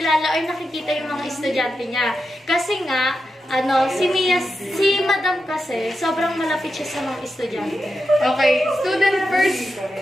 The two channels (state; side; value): normal; both; correlation 0.88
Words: or nakikita yung mga estudyante niya. Kasi nga, si madam kasi, sobrang malapit siya sa mga estudyante. Okay, student first.